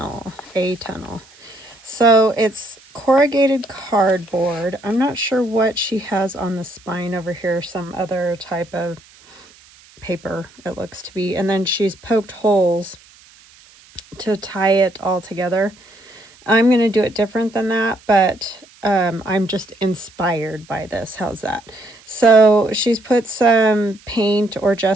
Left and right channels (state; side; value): noise; right; hiss, 26 dB below the sound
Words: A. Tunnell. So it's corrugated cardboard. I'm not sure what she has on the spine over here, some other type of paper it looks to be. And then she's poked holes to tie it all together. I'm going to do it different than that, but I'm just inspired by this. How's that? So she's put some paint or